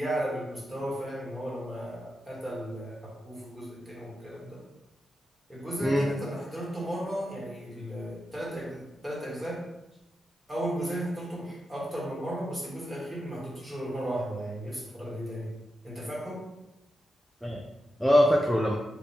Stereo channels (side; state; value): both; normal; correlation 0.89